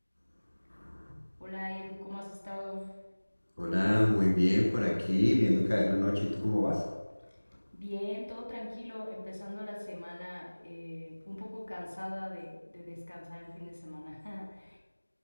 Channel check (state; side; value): inverted; both; correlation -1.00